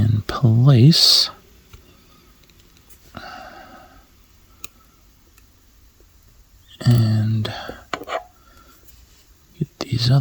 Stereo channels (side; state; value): both; identical; correlation 1.00